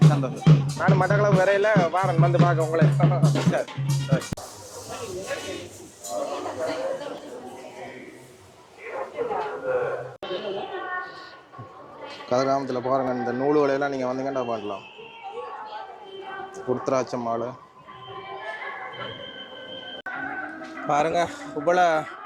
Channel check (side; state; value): both; identical; correlation 1.00